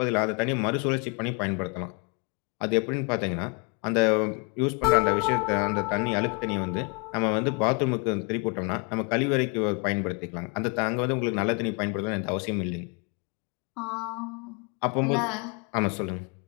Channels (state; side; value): quieter; right; 33.9 dB